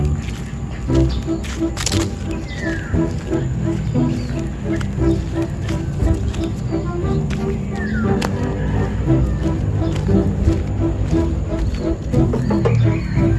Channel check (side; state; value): both; identical; correlation 1.00